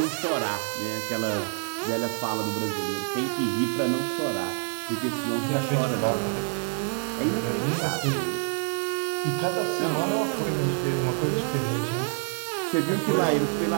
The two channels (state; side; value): silent; left; 60 dB below the other